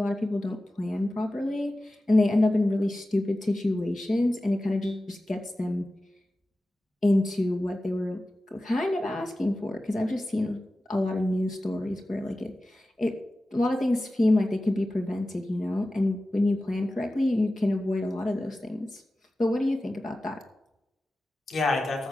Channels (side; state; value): both; normal; correlation 0.95